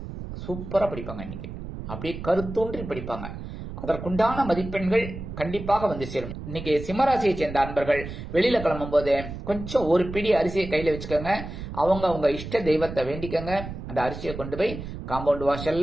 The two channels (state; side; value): noise; right; rumble, 9 dB below the sound